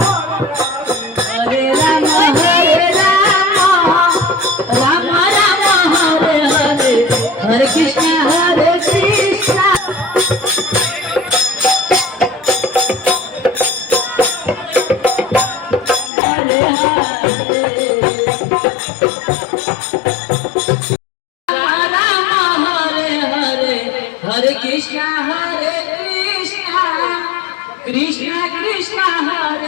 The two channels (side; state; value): right; drops out; at 16.1 s